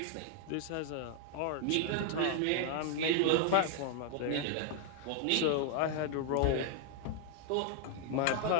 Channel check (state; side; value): different; both; correlation 0.00